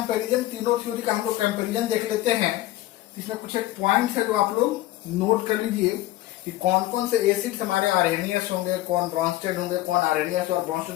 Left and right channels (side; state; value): right; quieter; 16.1 dB